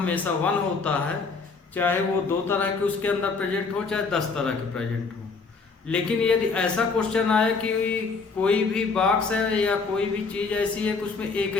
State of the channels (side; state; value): right; quieter; 4.5 dB